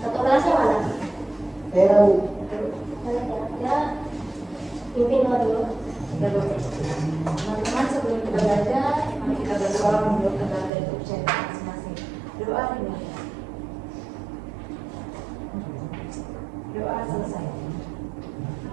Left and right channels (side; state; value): left; drops out; at 10.7 s